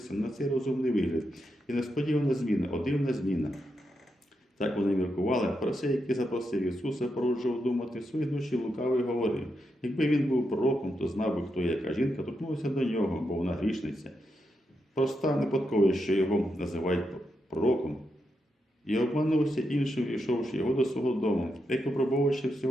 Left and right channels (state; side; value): normal; both; correlation 0.84